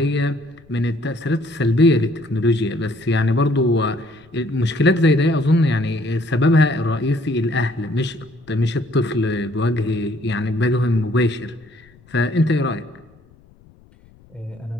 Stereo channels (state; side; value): noise; left; rumble, 28 dB below the sound